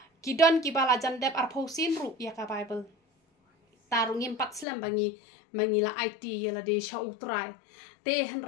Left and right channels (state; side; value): drops out; right; at 4.7 s